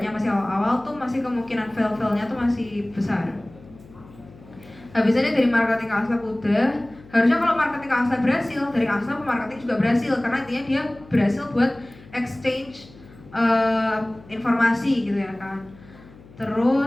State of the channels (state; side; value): noise; left; hum, 22 dB below the sound